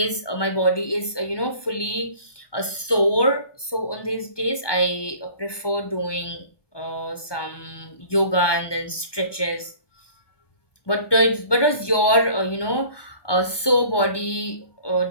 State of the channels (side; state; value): right; late; 1.2 ms